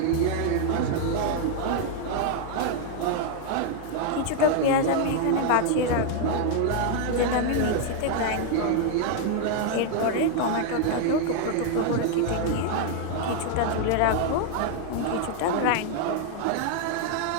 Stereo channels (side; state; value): both; different; correlation 0.00